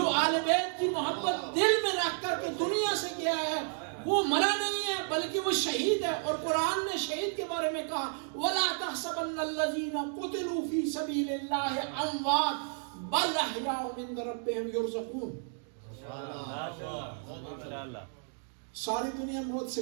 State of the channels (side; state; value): left; silent; 56 dB below the other